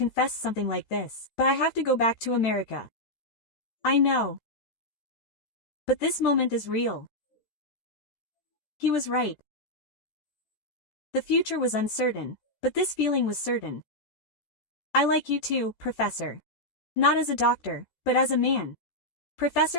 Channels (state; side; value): late; right; 13 ms